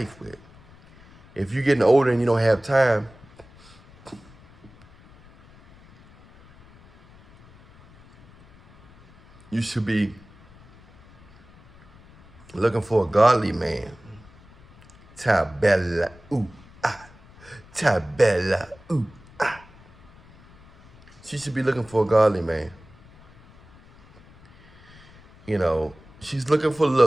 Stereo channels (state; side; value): noise; left; rumble, 25 dB below the sound